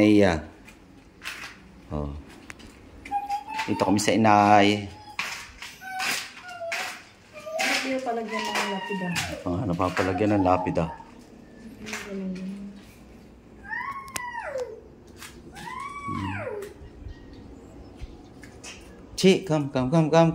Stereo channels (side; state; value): both; identical; correlation 1.00